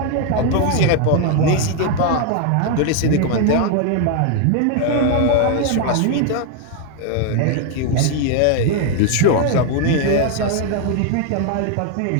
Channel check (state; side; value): different; both; correlation 0.01